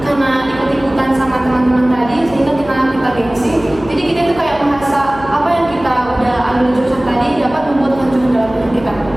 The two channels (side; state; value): left; noise; hum, 16 dB below the sound